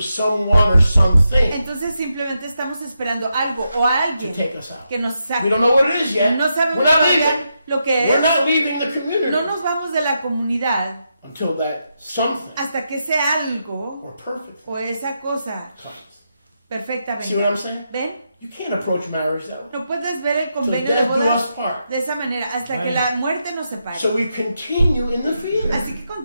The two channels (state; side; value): inverted; both; correlation -0.84